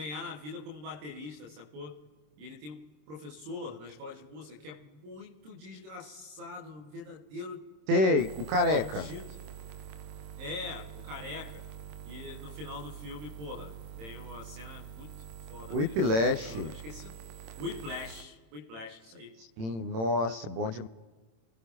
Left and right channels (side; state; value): left; late; 27 ms